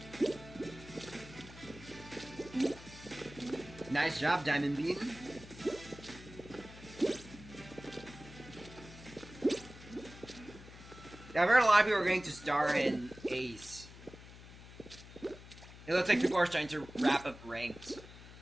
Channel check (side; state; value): left; noise; hum, 17 dB below the sound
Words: Nice job, Diamond Bean. Yeah, I've heard a lot of people are going to star in Ace. It looks like people are starting to wrap up ranked.